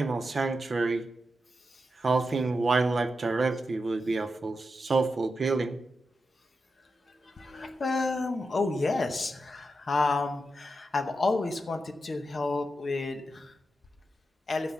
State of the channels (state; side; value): normal; both; correlation 0.88